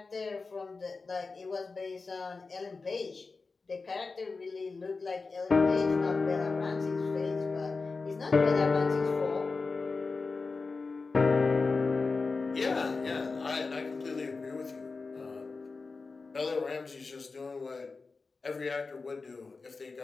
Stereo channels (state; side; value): quieter; right; 4.2 dB